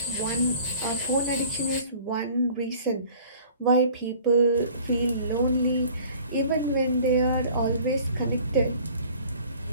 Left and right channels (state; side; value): inverted; both; correlation -0.48